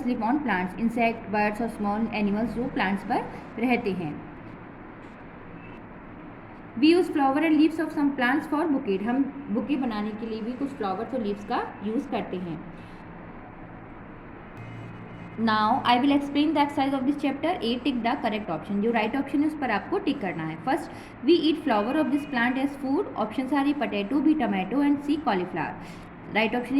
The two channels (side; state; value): both; identical; correlation 1.00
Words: live on plants. Insect, birds और स्मॉल एनिमल्स जो प्लांट्स पर रहते हैं। We use flower and leaves of some plants for bouquet. हम बुके बनाने के लिए भी कुछ फ्लावर्स और लीव्स का यूज़ करते हैं। Now I will explain the exercise of this chapter. A, tick the correct option. जो राइट ऑप्शन है उस पर आपको टिक करना है। First, we eat flower of this plant as food. Option are A, potato, B, tomato and C, cauliflower. Right option